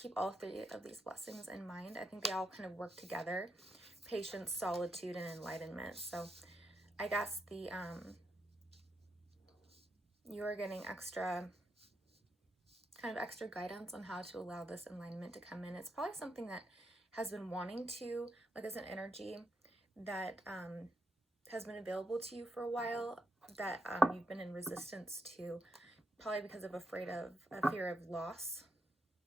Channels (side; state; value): both; normal; correlation 0.80